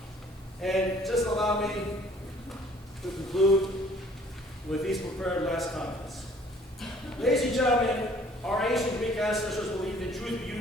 And just allow me to conclude with these prepared last comments. Ladies and gentlemen, our ancient Greek ancestors believed in truth,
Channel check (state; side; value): normal; both; correlation 0.56